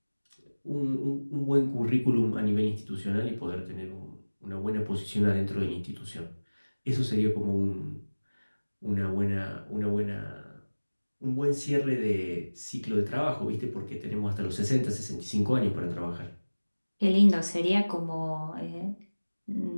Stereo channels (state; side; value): inverted; both; correlation -1.00